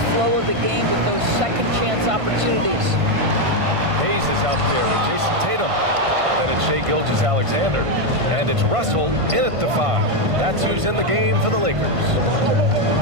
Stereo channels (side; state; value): left; late; 1.5 ms